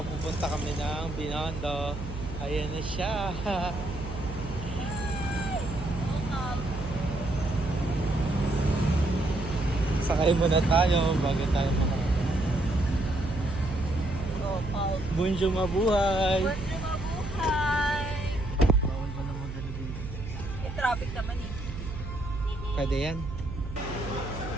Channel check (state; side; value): noise; right; hum, 8 dB below the sound